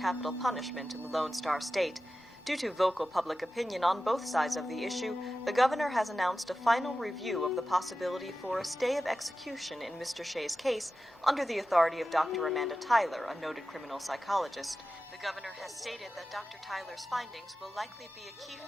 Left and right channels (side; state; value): both; normal; correlation 0.94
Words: punishment in the Lone Star State. Due to vocal public opinion on both sides of the issue, the governor has announced a final review of the possibility for a stay of execution in Mr. Shea's case under the authority of Dr. Amanda Tyler, a noted criminal psychologist. The governor has stated that Dr. Tyler's findings will likely be a key